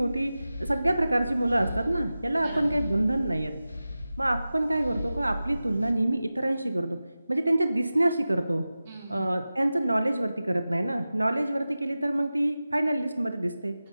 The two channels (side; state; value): both; inverted; correlation -0.95